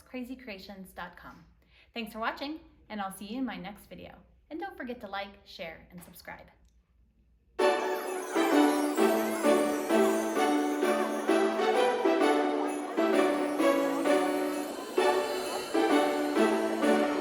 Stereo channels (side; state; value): both; identical; correlation 1.00